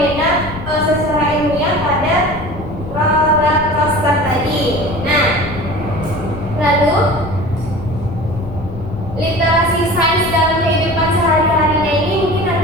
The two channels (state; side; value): noise; left; rumble, 11 dB below the sound